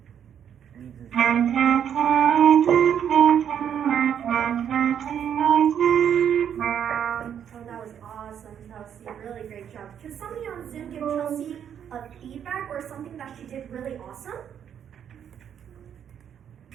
Oh, that was awesome, Chelsea. Really great job. Can somebody on Zoom give Chelsea a feedback or something that she did really awesome?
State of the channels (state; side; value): quieter; left; 8.8 dB